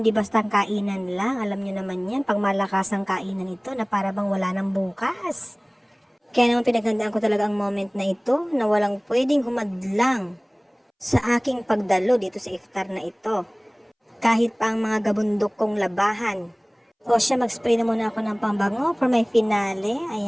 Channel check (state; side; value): identical; both; correlation 1.00